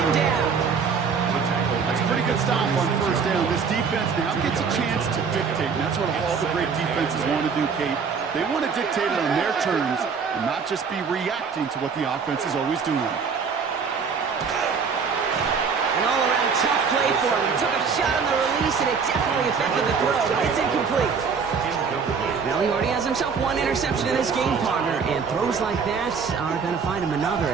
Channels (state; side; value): quieter; left; 5.8 dB